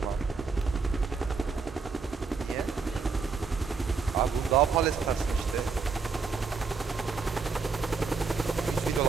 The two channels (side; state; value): left; quieter; 4.8 dB